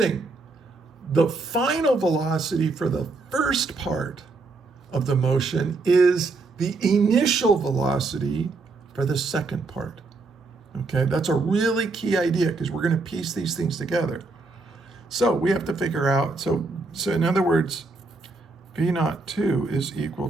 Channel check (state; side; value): quieter; left; 3.6 dB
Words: The final velocity for the first part of the motion is the initial velocity for the second part. Okay, that's a really key idea because we're going to piece these things together. So we have to figure out, so in other words, V naught 2 is equal